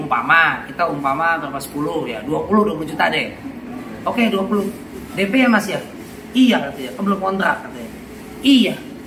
berapa 10 ya, 20 juta deh. Oke, 20. DP ya Mas ya? Iya katanya, kan belum kontrak katanya. Iya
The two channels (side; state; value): both; identical; correlation 1.00